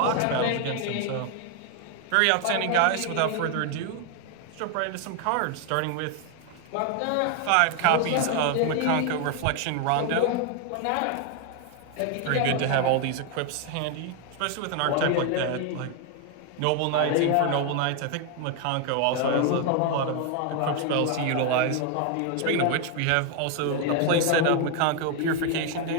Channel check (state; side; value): different; both; correlation 0.01